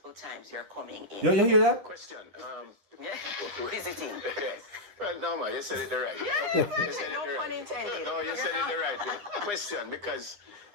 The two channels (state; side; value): late; left; 9.8 ms